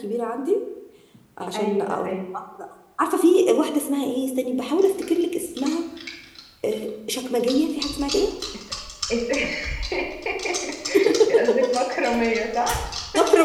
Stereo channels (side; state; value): both; identical; correlation 1.00